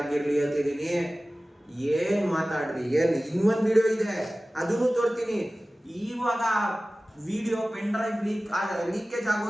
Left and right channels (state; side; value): normal; both; correlation 0.97